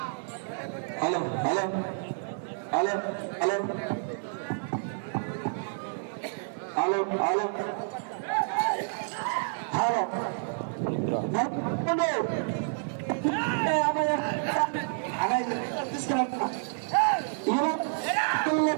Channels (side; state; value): left; silent; digital silence